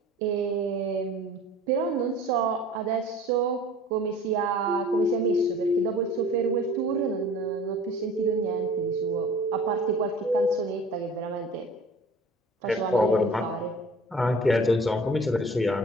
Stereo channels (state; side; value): normal; both; correlation 0.45